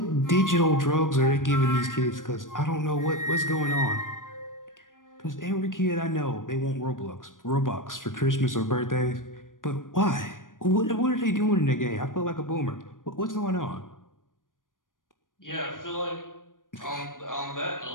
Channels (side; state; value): right; late; 0.89 ms